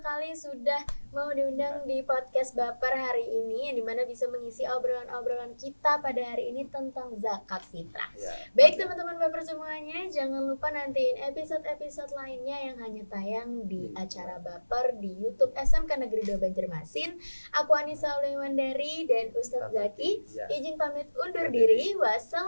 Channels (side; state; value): both; inverted; correlation -1.00